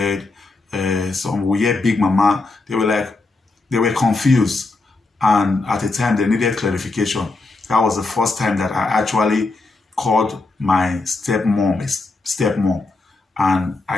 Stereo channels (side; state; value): right; quieter; 3.4 dB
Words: Some we hear Big Mama. They were confused. And at the time, they needed clarification. That was the first time that I actually called my stepmom. And